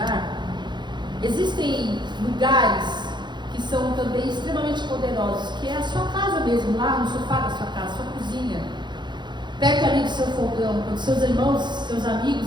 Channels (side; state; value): left; late; 0.22 ms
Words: existem lugares que são também extremamente poderosos, que é a sua casa mesmo, lá no sofá da sua casa, sua cozinha, perto ali do seu fogão, quando seus irmãos, seus